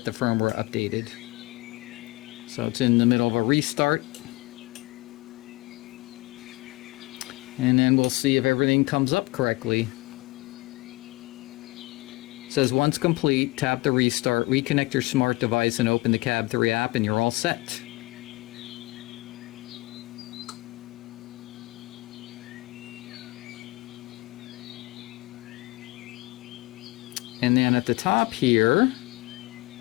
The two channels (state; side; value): quieter; right; 22.5 dB